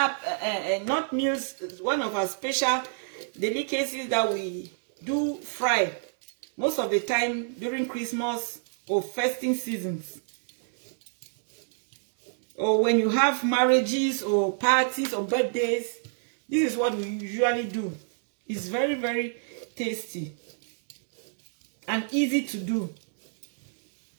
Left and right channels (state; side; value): silent; left; digital silence